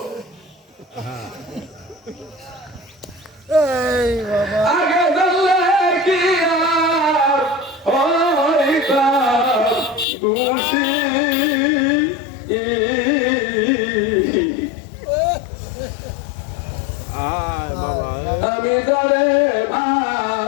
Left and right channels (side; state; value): right; drops out; at 10.1 s